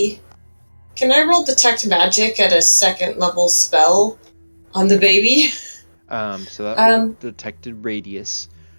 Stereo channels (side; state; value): both; inverted; correlation -1.00